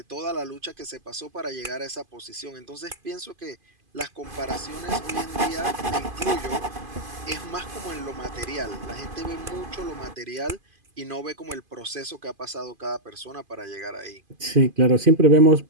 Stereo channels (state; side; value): late; left; 2.5 ms